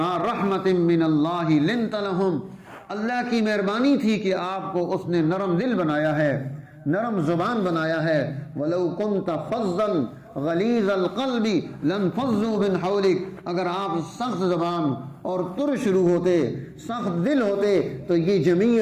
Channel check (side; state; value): both; identical; correlation 1.00